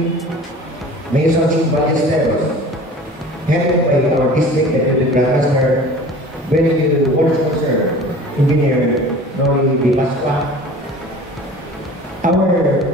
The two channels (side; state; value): both; normal; correlation 0.42